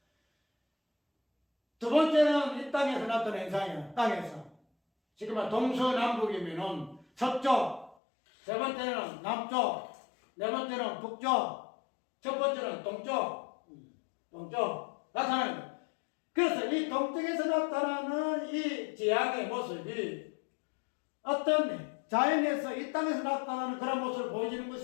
두 번째는 이 땅에서 나타나는 현상이에요. 땅에서. 지금 동서남북이면은 서쪽, 세 번째는 남쪽, 네 번째는 북쪽, 첫 번째는 동쪽 나타나는 거예요. 그래서 이 동쪽에서 나타나는 이 지향의 모습이 어떤 자연에서 이 땅에서 나타나는 그런 모습을 보여주는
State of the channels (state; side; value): drops out; right; at 8.0 s